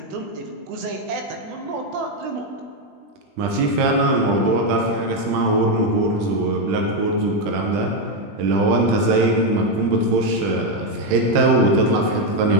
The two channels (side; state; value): left; late; 20 ms